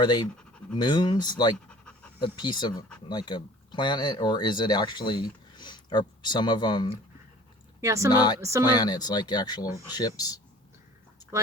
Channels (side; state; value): both; normal; correlation 0.47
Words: moons, like a piece of like a planet, or is it actually, are some of them some planets, like actual ships,